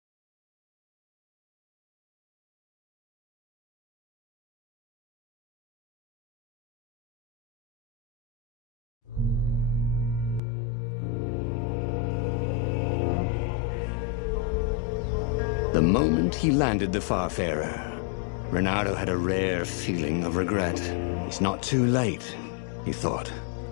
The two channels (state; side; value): drops out; right; at 10.4 s